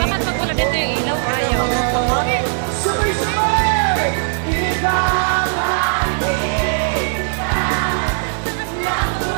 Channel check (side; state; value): left; silent; digital silence